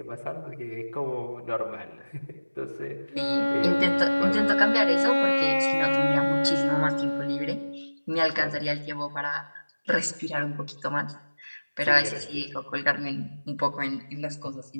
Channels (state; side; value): inverted; both; correlation -1.00